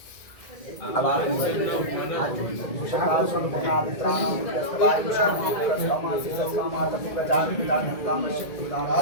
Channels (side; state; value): right; late; 2.0 ms